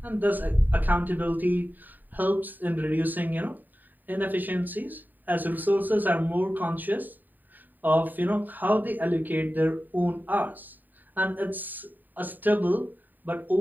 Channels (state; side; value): late; left; 0.088 ms